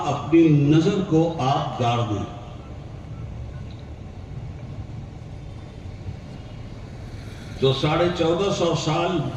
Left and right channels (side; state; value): both; identical; correlation 1.00